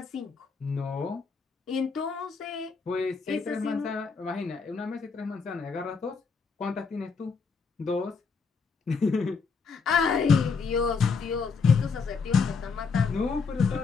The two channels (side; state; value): right; quieter; 5.0 dB